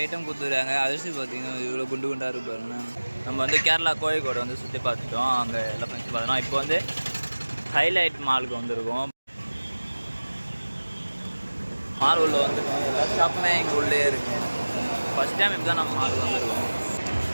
ஐட்டம் கொடுத்துருக்காங்க. அரிசி பார்த்தீங்கன்னா இவ்வளோ குண்டு குண்டாக இருக்கு பாருங்க. நம்ம வந்து கேரளா கோழிக்கோடு வந்து சுற்றி பார்த்துட்டோம், அங்கே எல்லாம் ஃபங்க்ஷன் பார்த்தோம். இப்போ வந்து ஹைலைட் மாலுக்கு வந்திருக்கோம். மால் உள்ள வந்துருக்கோம். எல்லா ஷாப்புமே இங்கே உள்ளே இருக்கு. ஃபஸ்ட் டைம் இப்போ தான் நம்ம மாலுக்கு வந்திருக்கோம்.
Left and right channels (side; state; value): both; inverted; correlation -1.00